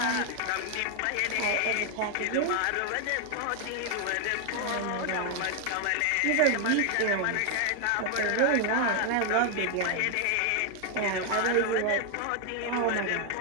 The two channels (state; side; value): different; both; correlation 0.00